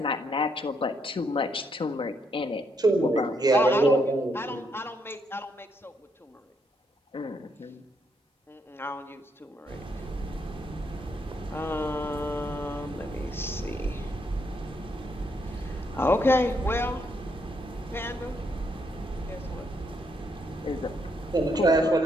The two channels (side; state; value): both; normal; correlation 0.75